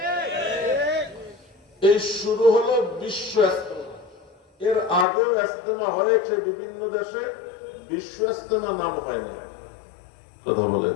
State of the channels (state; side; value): drops out; right; at 5.1 s